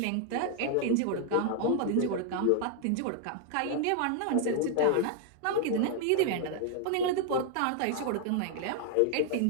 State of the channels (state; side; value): different; both; correlation 0.00